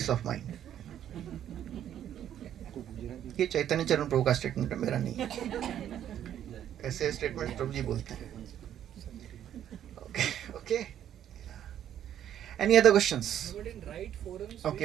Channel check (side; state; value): left; quieter; 10.5 dB